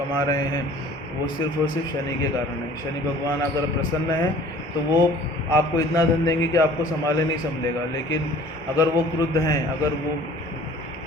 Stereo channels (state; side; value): normal; both; correlation 0.50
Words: रहे हैं वो सिर्फ और सिर्फ शनि के कारण है। शनि भगवान अगर प्रसन्न है तो वो आपको इतना धन देंगे कि आपको संभाले नहीं संभलेगा, लेकिन अगर वो क्रुद्ध हैं, अगर वो